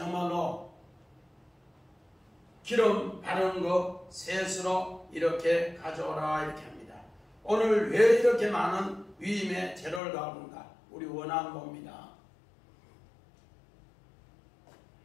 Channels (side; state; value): right; drops out; at 10.0 s